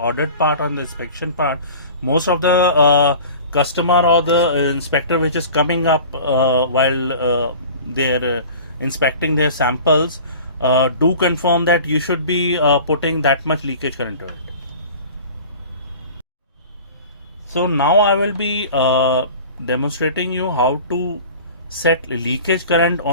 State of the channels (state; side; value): inverted; both; correlation -0.41